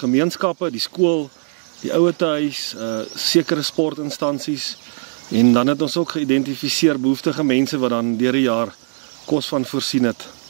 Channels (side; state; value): left; silent; 65 dB below the other